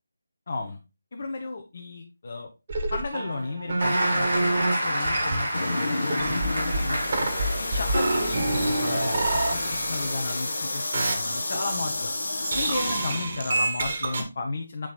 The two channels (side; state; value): both; inverted; correlation -0.89